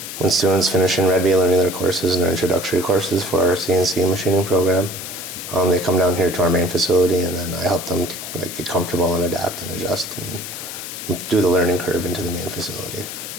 when students finish in Red Bee learning their courses and their introductory courses for our CNC machining program. They come down here to our main facility, and then I help them like get comfortable and adapt and adjust and do the learning curve into the main facility.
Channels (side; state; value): left; noise; hiss, 9 dB below the sound